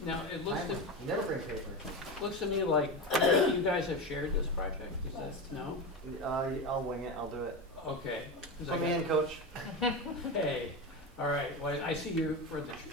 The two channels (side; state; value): both; normal; correlation 0.20